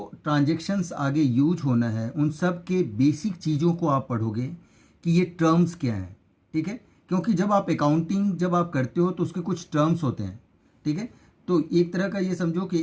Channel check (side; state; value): both; identical; correlation 1.00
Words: ट्रांजैक्शंस आगे यूज होना है उन सब के बेसिक चीज़ों को आप पढ़ोगे कि ये टर्म्स क्या हैं। ठीक है, क्योंकि जब आप अकाउंटिंग जब आप करते हो तो उसके कुछ टर्म्स होते हैं। ठीक है, तो एक तरह का ये समझो कि